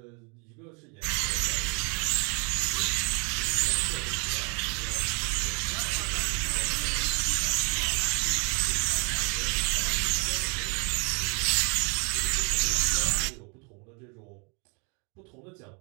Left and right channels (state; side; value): quieter; left; 34.5 dB